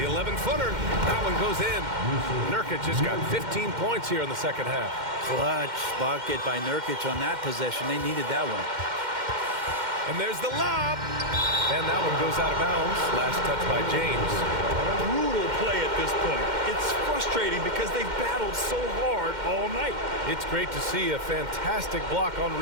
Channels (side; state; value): left; late; 2.1 ms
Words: 11-footer. That one goes in. Nurkic just got 15 points here in the second half. Clutch bucket by Nurkic on that possession. They needed that one. And there's the lob. And that one goes out of bounds. Last touch by James. Brutal play at this point. It's frustrating because they've battled so hard all night. It's great to see a fantastic block on